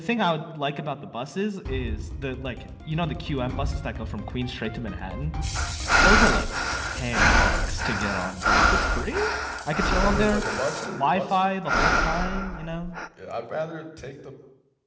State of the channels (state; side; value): identical; both; correlation 1.00